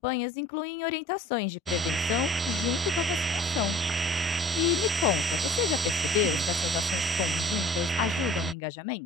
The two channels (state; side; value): normal; both; correlation 0.49